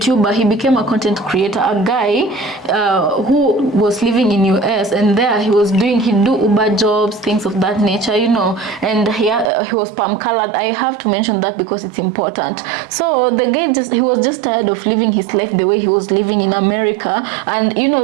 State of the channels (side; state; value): left; drops out; at 9.5 s